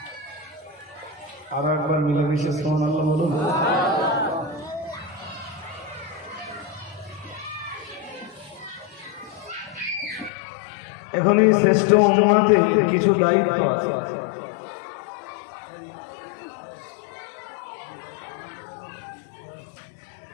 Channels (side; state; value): right; drops out; at 10.3 s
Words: আর একবার মিলেমিশে সুবহানাল্লাহ বলুন। এখন এই শ্রেষ্ঠ উম্মতের কিছু দায়িত্ব আছে।